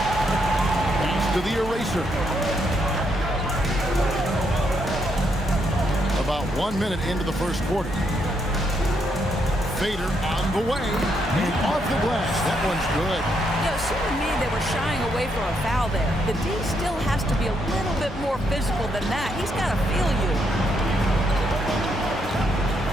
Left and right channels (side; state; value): both; normal; correlation 0.76